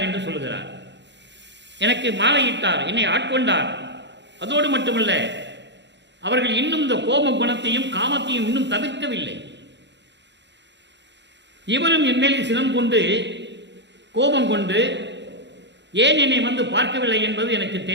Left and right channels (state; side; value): late; left; 0.52 ms